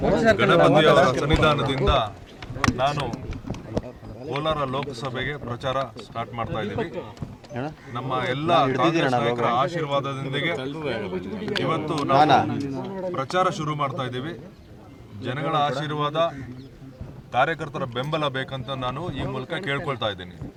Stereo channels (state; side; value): identical; both; correlation 1.00